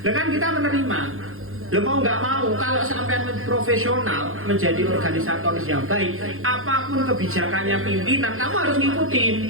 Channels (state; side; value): late; left; 0.61 ms